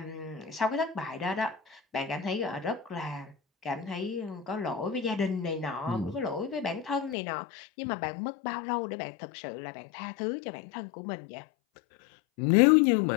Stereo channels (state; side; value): drops out; right; at 7.2 s